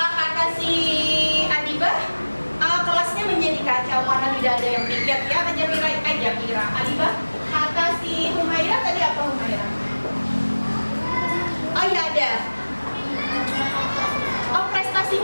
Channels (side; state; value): both; inverted; correlation -1.00